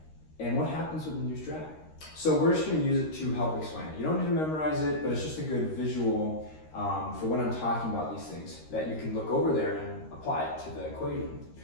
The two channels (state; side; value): late; right; 13 ms